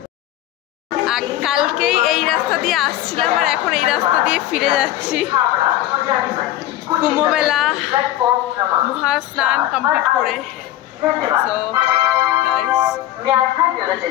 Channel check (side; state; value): right; quieter; 14.0 dB